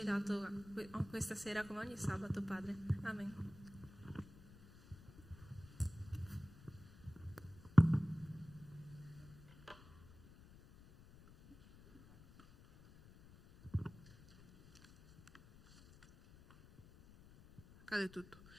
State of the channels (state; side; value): noise; left; rumble, 21 dB below the sound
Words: dato questa sera, come ogni sabato, Padre. Amen. Cade tutto.